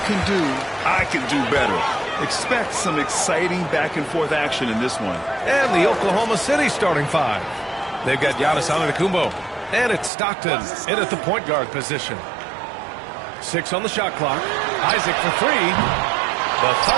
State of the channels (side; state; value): left; drops out; at 10.1 s